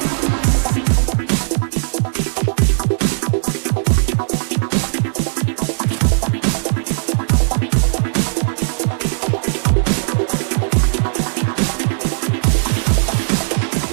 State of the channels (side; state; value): left; silent; digital silence